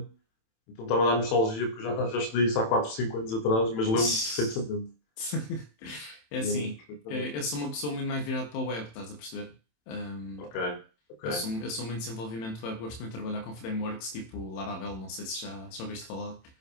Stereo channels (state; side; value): late; right; 27 ms